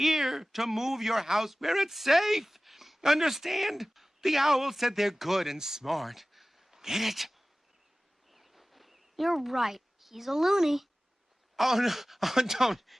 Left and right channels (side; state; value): both; normal; correlation 0.97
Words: to move your house where it's safe. Understand? The owl said they're good and smart. Get it? You're right. He's a loony. Oh, no. Oh, don't.